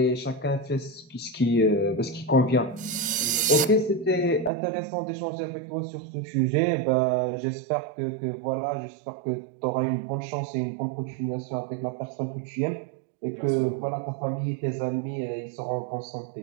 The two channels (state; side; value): drops out; left; at 4.5 s